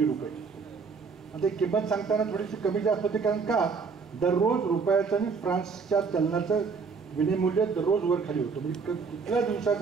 रुपये. आता किंमत सांगताना थोडीशी कमी जास्त होते, कारण का दररोज रुपयाचं आणि फ्रान्सच्या चलनाचं विनिमूल्य दररोज वर खाली होतं. म्हणजे कुठल्या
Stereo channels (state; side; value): quieter; left; 5.2 dB